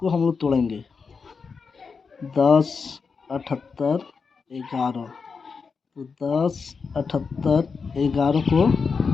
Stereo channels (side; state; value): right; quieter; 5.2 dB